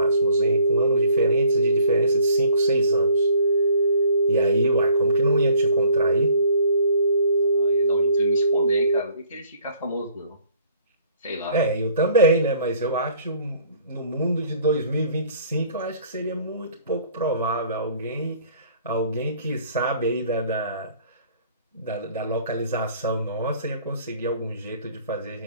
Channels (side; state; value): both; inverted; correlation -0.59